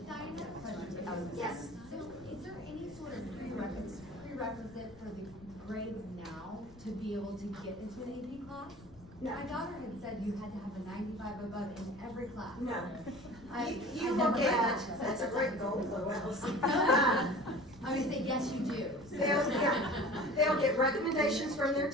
Diane, I have a question. Yes. So is there any sort of prerequisite for the grades now to be able to get into an AP class? No. My daughter had said you had to have a 95 above in every class. No. I You never look heard at, that. that's a great goal, Lois. I'm gonna say, yes, you do. They'll get recommendations from their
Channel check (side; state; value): left; noise; rumble, 21 dB below the sound